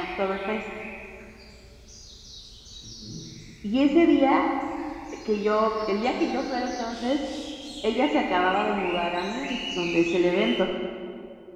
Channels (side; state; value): both; identical; correlation 1.00